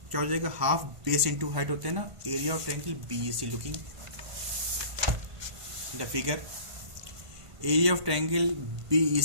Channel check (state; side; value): late; left; 1.5 ms